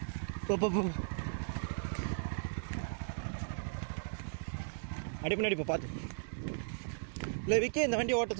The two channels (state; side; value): silent; left; digital silence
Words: அப்படியே முன்னாடி போ பார்த்து. இல்லை விக்கி இந்த வண்டி ஓட்ட